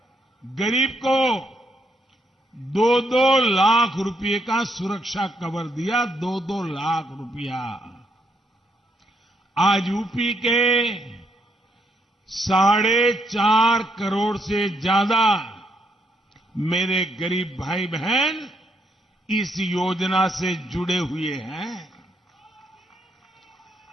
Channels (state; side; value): normal; both; correlation 0.75